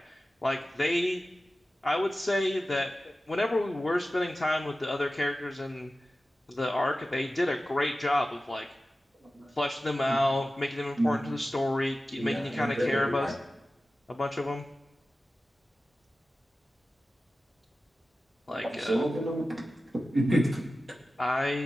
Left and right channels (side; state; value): both; normal; correlation 0.95